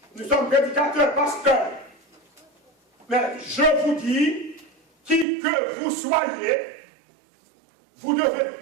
Nous sommes prédicateurs, pasteurs. Mais je vous dis, qui que vous soyez, vous devez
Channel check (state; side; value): drops out; left; at 5.2 s